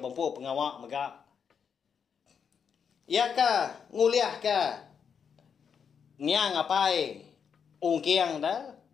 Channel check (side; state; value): right; quieter; 6.9 dB